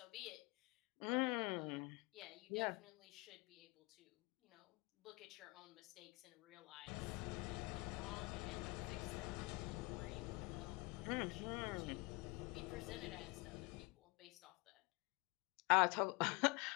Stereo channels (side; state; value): right; quieter; 26.0 dB